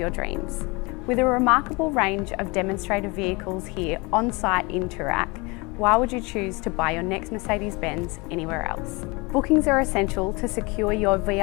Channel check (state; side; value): quieter; right; 26.7 dB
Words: dreams. With a remarkable range of demonstrator vehicles here on site in Toorak, why would you choose to buy your next Mercedes-Benz anywhere else? Bookings are essential to secure your